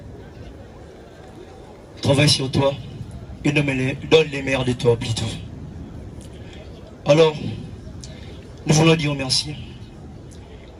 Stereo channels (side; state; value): both; identical; correlation 1.00